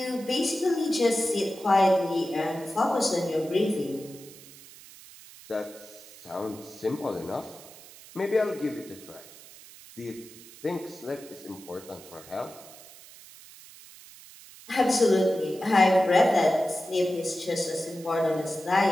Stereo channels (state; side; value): noise; right; hiss, 19 dB below the sound